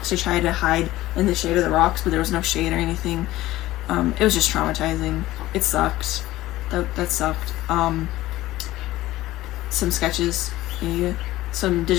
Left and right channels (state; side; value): quieter; right; 16.4 dB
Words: to try to hide in the shade of the rocks, but there was no shade or anything. It was just traumatizing. It sucked. That sucked. Some sketches, yeah, some